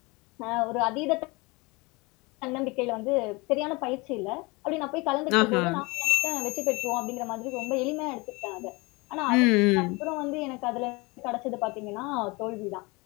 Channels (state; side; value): quieter; right; 25.7 dB